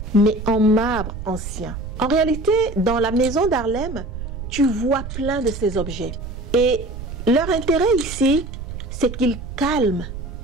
mais en marbre ancien. En réalité, dans la maison d'Harlem, tu vois plein de ces objets. Et leur intérêt ici, c'est qu'ils calment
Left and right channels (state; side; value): noise; right; rumble, 9 dB below the sound